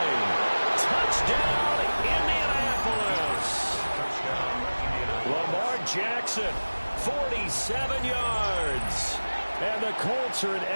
Touchdown, Indianapolis. Lamar Jackson, 47 yards. And the Colts are an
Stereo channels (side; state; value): both; inverted; correlation -1.00